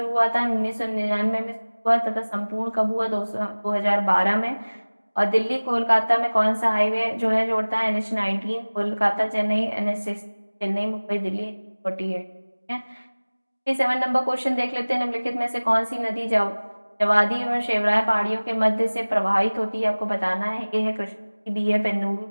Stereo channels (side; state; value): both; inverted; correlation -1.00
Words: हुआ था, 1999 में हुआ तथा संपूर्ण कब हुआ, 2012 में। और दिल्ली कोलकाता में कौन सा हाईवे जो है जोड़ता है, NH19, कोलकाता चेन्नई, NH6 चेन्नई मुंबई दिल्ली 48। ठीक है, 57 नंबर क्वेश्चन देख लेते हैं। निम्नलिखित में से कौन सी नदी जवादी और शेवराय पहाड़ियों के मध्य से प्रवाहित होती है, आपको बताना है। ए है कृष्णा, बी है